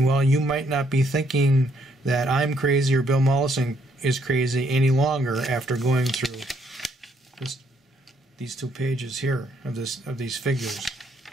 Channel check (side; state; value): both; normal; correlation 0.70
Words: you might not be thinking that I'm crazy or Bill Mollison is crazy any longer after going through these 2 pages here of these figures.